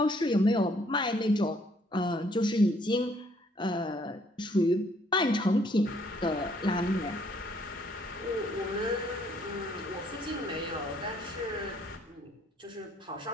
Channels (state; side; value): normal; both; correlation 0.65